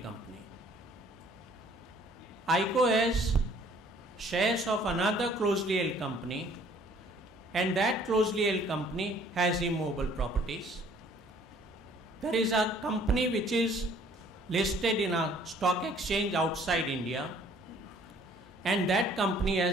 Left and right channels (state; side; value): normal; both; correlation 0.57